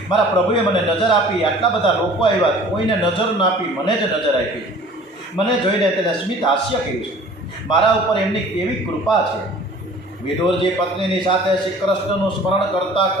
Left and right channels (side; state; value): both; normal; correlation 0.48